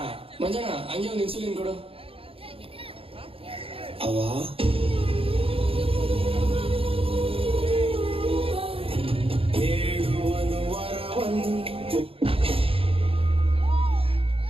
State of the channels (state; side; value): late; left; 0.27 ms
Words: ಮಂಜಣ್ಣ ಹಂಗೆ ಒಂದು ಇನ್ಸುಲಿನ್ ಕೊಡು. ಅವ್ವ ಹೇಳುವನು ವರವನ್ನು